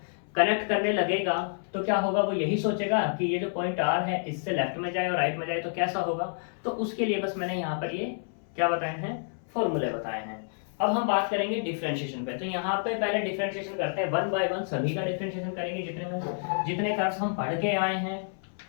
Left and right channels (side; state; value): right; silent; 59 dB below the other